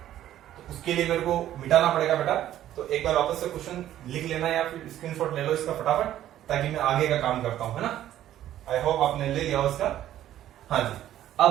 तो उसके लिए मेरे को मिटाना पड़ेगा बेटा। तो एक बार वापस से क्वेश्चन लिख लेना या फिर स्क्रीनशॉट ले लो इसका फटाफट, ताकि मैं आगे का काम करता हूं, है ना। आई होप आपने ले लिया उसका। हाँ जी, अब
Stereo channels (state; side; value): quieter; left; 12.4 dB